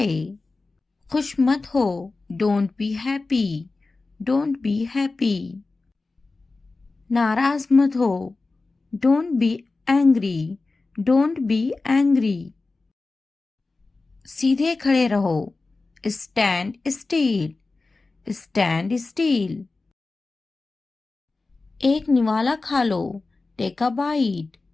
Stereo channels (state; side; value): quieter; right; 3.6 dB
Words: खुश मत हो, don't be happy, don't be happy. नाराज मत हो, don't be angry, don't be angry. सीधे खड़े रहो, स्टैंड स्टील, स्टैंड स्टील। एक निवाला खा लो, take a bite,